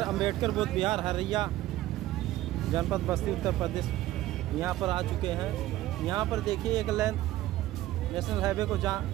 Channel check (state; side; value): quieter; left; 15.4 dB